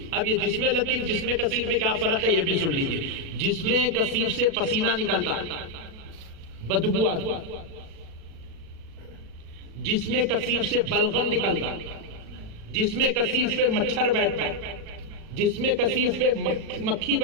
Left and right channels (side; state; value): left; late; 36 ms